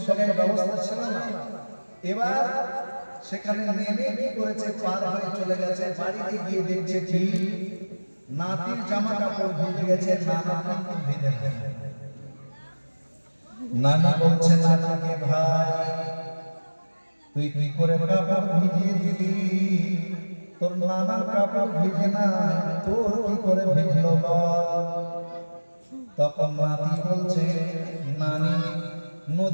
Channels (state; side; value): inverted; both; correlation -1.00